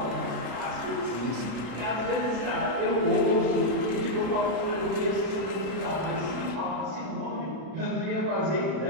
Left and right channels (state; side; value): late; left; 32 ms